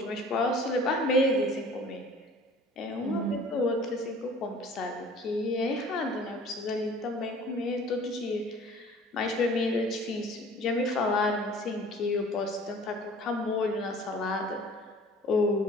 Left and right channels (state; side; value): normal; both; correlation 0.48